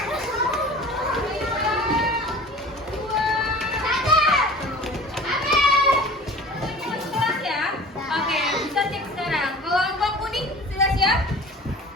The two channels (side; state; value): both; normal; correlation 0.41